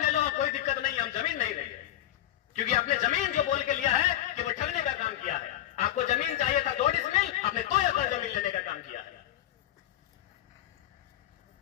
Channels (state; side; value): quieter; right; 13.0 dB